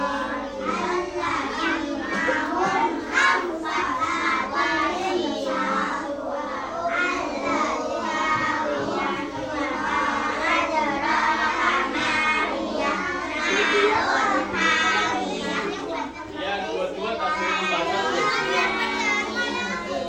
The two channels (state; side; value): identical; both; correlation 1.00